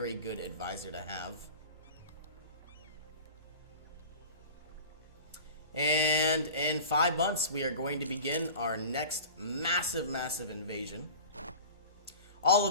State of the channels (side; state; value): both; inverted; correlation -0.37